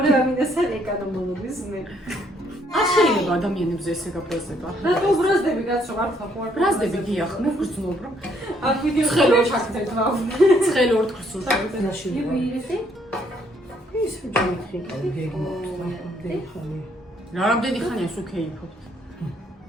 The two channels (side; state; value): both; normal; correlation 0.69